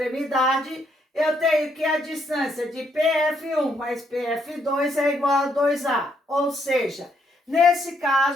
eu tenho que a distância de PF1 mais PF2 é igual a 2A. Ou seja, nesse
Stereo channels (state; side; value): normal; both; correlation 0.73